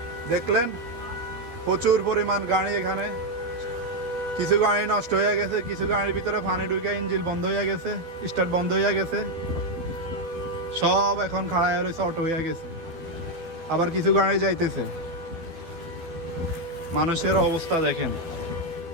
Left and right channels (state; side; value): late; left; 12 ms